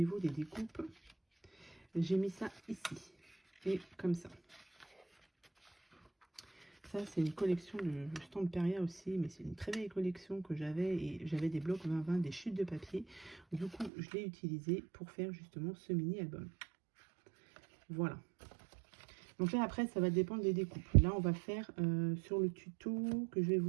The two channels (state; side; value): drops out; left; at 13.9 s